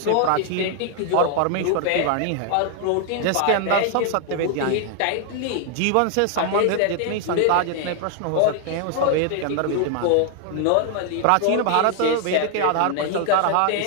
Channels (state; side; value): different; both; correlation 0.00